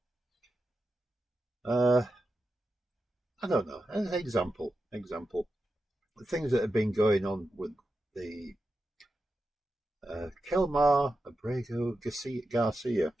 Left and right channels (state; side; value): normal; both; correlation 0.89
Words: Uh, I don't know. An example. The things that have been going on with the Kelmar Abrego Garcia,